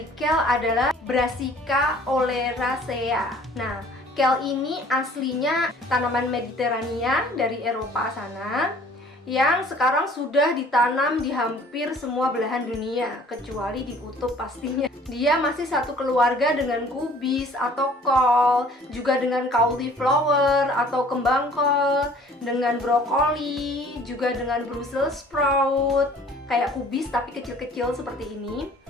kale adalah Brassica oleracea. Nah, kale ini aslinya tanaman Mediterania dari Eropa sana, yang sekarang sudah ditanam di hampir semua belahan dunia, kecuali di kutub pastinya. Dia masih satu keluarga dengan kubis atau kol, juga dengan cauliflower atau kembang kol, dengan brokoli, juga dengan Brussels sprout, kayak kubis tapi kecil-kecil seperti ini.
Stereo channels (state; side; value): normal; both; correlation 0.53